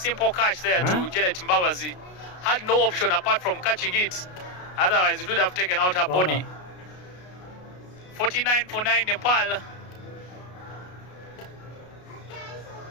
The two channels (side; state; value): right; late; 33 ms